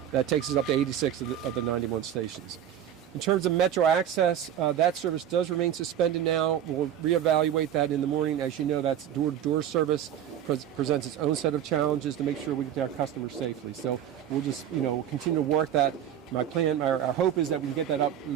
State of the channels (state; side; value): quieter; left; 10.2 dB